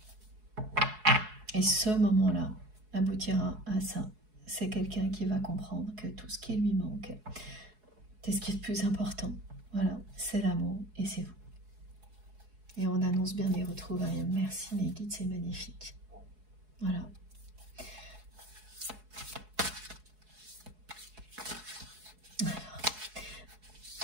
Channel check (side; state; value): left; late; 4.7 ms